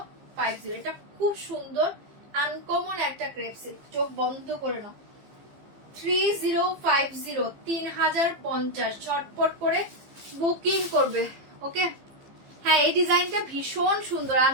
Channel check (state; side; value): late; left; 15 ms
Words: এটা খুব সুন্দর আনকমন একটা ক্রেপ সিল্ক, চোখ বন্ধ করে নাও। 3050 3050, ঝটপট করে বুকিং করবে। ওকে, হ্যাঁ এই ডিজাইনটা ভীষণ সুন্দর,